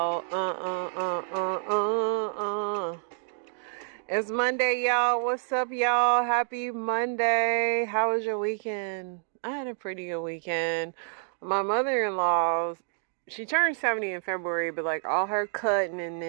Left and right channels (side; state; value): left; silent; 59 dB below the other